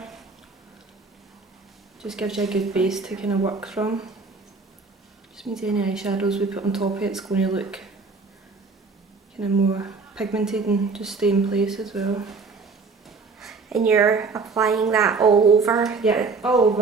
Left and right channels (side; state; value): left; quieter; 4.3 dB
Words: Just gives you a good base to kind of work from. Just means any eyeshadows we put on top of it's going to look kind of more pigmented and just stay in place as well. And you're applying that all over? Yeah, all